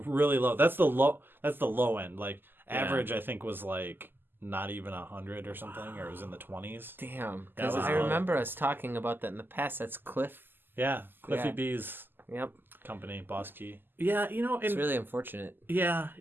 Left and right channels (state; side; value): late; left; 0.094 ms